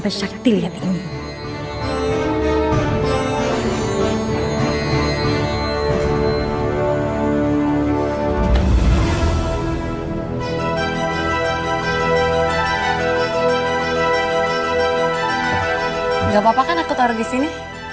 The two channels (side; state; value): both; identical; correlation 1.00